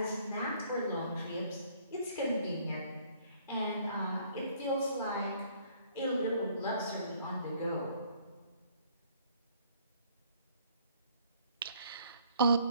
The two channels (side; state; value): both; inverted; correlation -0.61